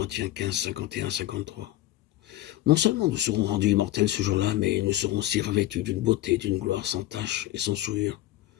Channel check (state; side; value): quieter; right; 15.0 dB